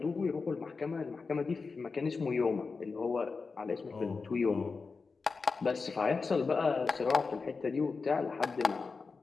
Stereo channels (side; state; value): right; quieter; 4.5 dB